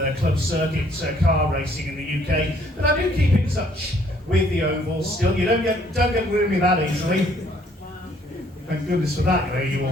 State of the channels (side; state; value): both; normal; correlation 0.63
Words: club circuit car racing in the UK. But I do keep in touch with the ovals still. You don't get rid of me that easily. Thank goodness for that, you